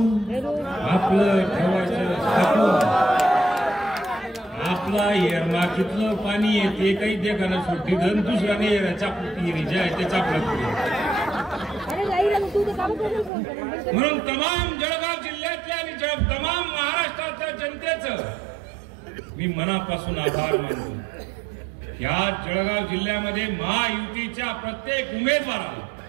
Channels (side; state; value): left; drops out; at 13.3 s